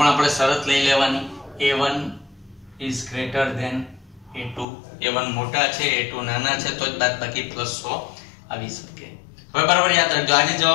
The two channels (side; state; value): right; drops out; at 4.7 s